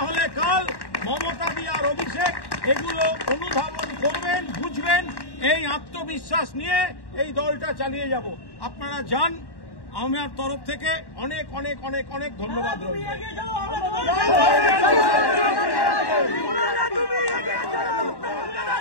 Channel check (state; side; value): late; right; 1.1 ms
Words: হলে কাল মমতা দি আর অভিষেক এগুলো অনুধাবন করবেন, বুঝবেন। এই আত্মবিশ্বাস নিয়ে এই দলটা চালিয়ে যাব। আপনারা যান। আমার তরফ থেকে অনেক অনেক অনেক অনেক ধন্যবাদ রইল।